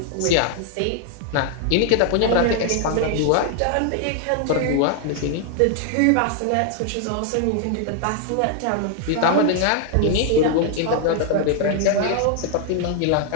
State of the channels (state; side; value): different; both; correlation 0.00